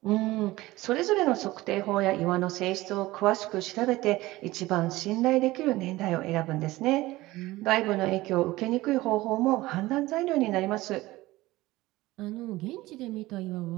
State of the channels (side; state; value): left; quieter; 18.4 dB